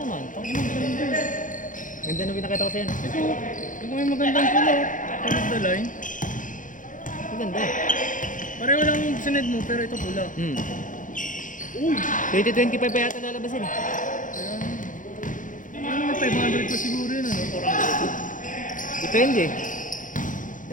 naman. Ganda na pinakita ko sa'yo. Ito may magandang pulo. Tulog the line. Maganda. Pareho lang yung sined mo pero ito pula. Uy! 2025 pa yata lalabasin eh. Kaya, ano may 500 pa siguro yun ano? 400. Depende.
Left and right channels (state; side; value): late; right; 0.38 ms